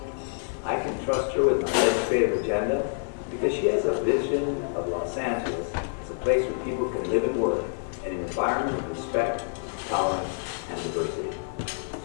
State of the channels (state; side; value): silent; right; 60 dB below the other